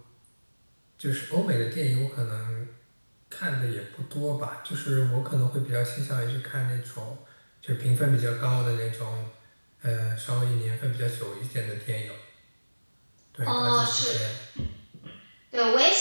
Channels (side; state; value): both; inverted; correlation -1.00